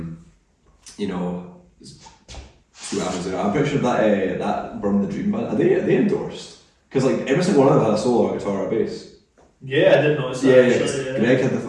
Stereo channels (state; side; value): identical; both; correlation 1.00